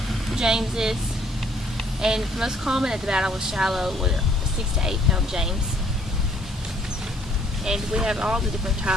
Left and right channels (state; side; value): normal; both; correlation 0.63